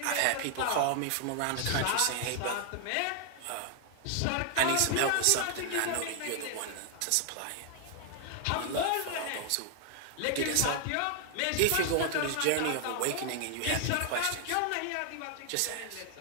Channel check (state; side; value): different; both; correlation 0.00